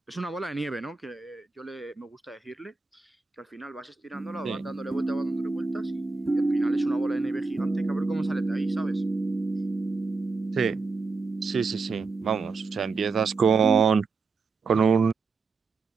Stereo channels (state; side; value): quieter; left; 4.2 dB